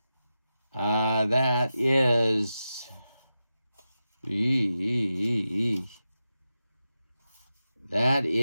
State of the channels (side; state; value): both; inverted; correlation -0.91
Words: That is... That